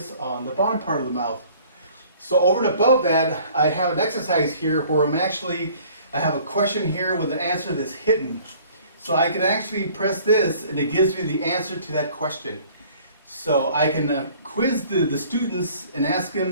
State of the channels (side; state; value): both; inverted; correlation -0.53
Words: on the bottom part of the mouth. So over and above that, I have an exercise here where I have a question here with an answer that's hidden. So I can actually press this and it gives me the answer to that question. So I can quiz the students and ask